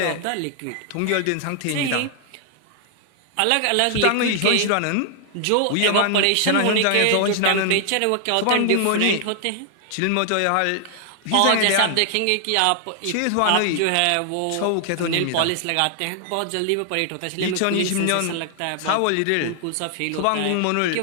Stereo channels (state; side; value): different; both; correlation 0.00